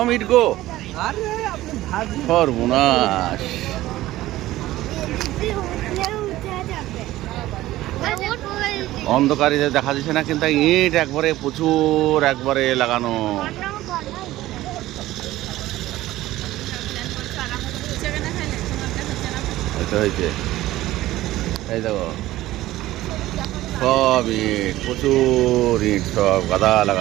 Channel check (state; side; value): quieter; left; 16.0 dB